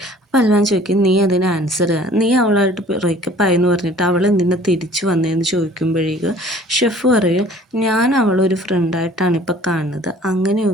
പൽവാൻ ചോദിക്കും നീ അതിന് ആൻസർ, നീ അവളായിട്ട് ബ്രേക്കപ്പ് ആയെന്ന് പറഞ്ഞിട്ട് അവൾ എന്തിനാ തിരിച്ചു വന്നതെന്ന് ചോദിക്കുമ്പോഴേക്കും ഷെഫ് പറയും ഞാൻ അവളൊരു ഫ്രണ്ടായിട്ടാണ് ഇപ്പോൾ കാണുന്നത്,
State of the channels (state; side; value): normal; both; correlation 0.51